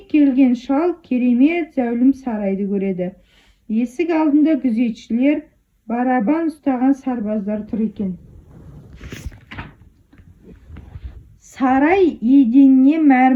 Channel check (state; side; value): identical; both; correlation 1.00